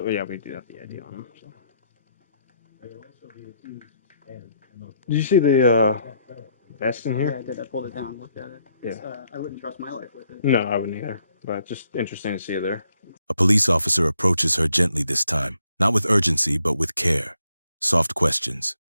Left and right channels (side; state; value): both; inverted; correlation -0.73